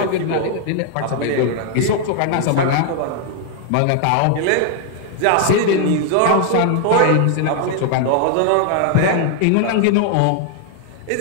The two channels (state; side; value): different; both; correlation 0.00